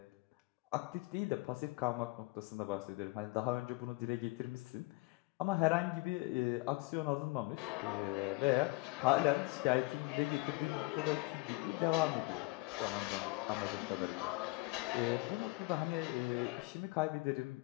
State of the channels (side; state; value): right; quieter; 24.8 dB